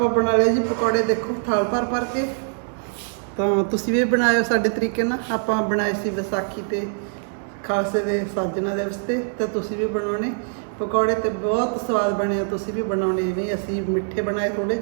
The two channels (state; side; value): silent; left; digital silence